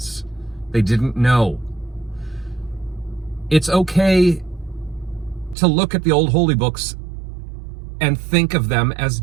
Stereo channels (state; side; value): drops out; left; at 5.6 s